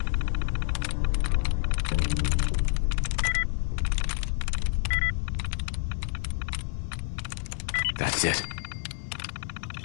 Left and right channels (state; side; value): silent; right; 59 dB below the other